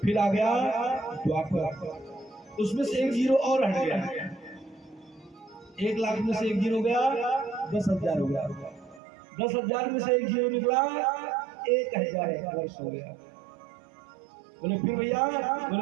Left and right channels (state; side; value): drops out; left; at 9.0 s